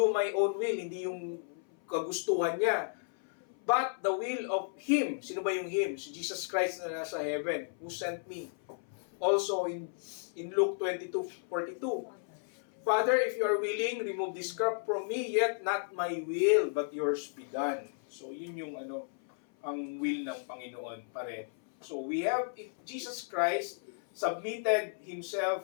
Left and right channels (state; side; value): silent; right; 55 dB below the other